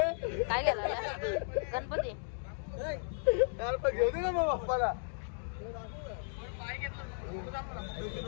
काय गेला गणपती घेऊ दे ना मग बाप्पाला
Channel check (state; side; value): silent; right; digital silence